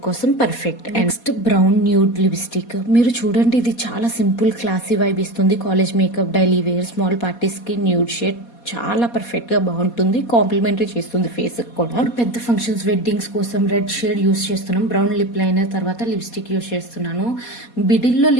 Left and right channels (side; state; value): right; late; 4.2 ms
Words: కోసం perfect. Next brown nude lipstick. మీరు చూడండి ఇది చాలా సింపుల్ క్లాసీ వైబ్ ఇస్తుంది. College makeup, daily wear, small parties కి న్యూడ్ షేడ్ చాలా పర్ఫెక్ట్ గా బాగుంటుంది. కాంప్లిమెంటరీ చేస్తుంది ఫేస్ కూడా. పెద్ద ఫంక్షన్స్, వెడ్డింగ్స్ కోసం రెడ్ షేడ్ యూస్ చేస్తున్నాం. బ్రౌన్ లిప్ లైనర్ తర్వాత లిప్స్టిక్ యూస్ చేస్తున్నాను. మిడిల్లో